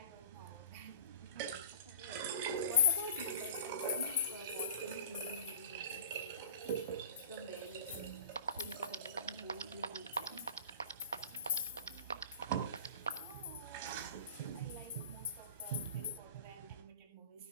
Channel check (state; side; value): inverted; both; correlation -0.40